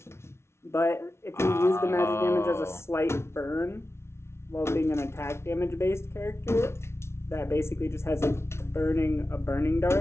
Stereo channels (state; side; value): late; right; 0.13 ms